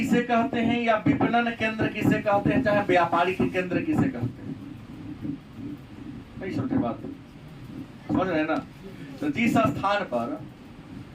कहते हैं या विपणन केंद्र किसे कहते हैं, चाहे व्यापारिक केंद्र किसे कहते हैं, नहीं समझे बात, समझ रहे हैं ना। तो जिस स्थान पर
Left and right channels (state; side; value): identical; both; correlation 1.00